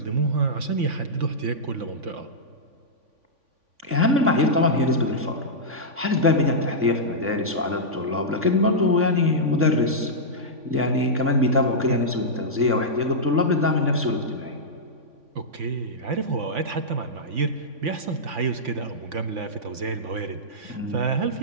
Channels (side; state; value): left; late; 3.5 ms